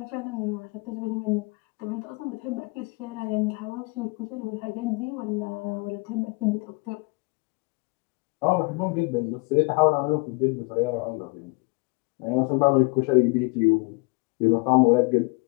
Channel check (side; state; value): right; quieter; 28.5 dB